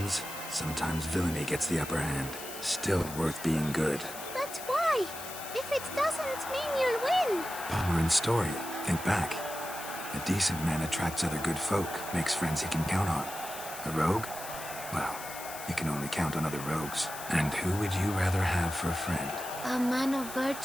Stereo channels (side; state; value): left; noise; hiss, 11 dB below the sound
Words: sometimes villainy gets the upper hand. Still worth being good. But why? If it doesn't mean you'll win. Palmerin's story. Think back. A decent man attracts other good folk, makes friends he can count on. A rogue? Well, he can only count on other rogues. And who would you rather have for a friend? A man of